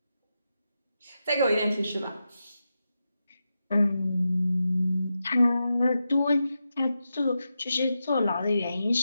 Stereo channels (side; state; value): both; inverted; correlation -0.89